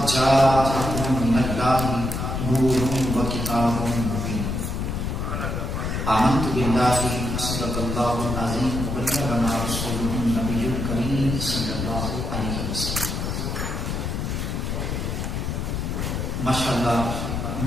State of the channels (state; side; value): noise; left; rumble, 2 dB below the sound